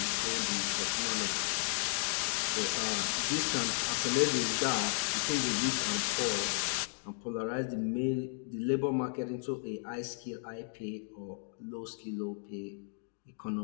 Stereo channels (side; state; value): right; silent; digital silence